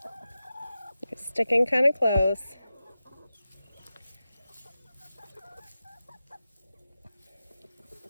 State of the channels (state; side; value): inverted; both; correlation -0.93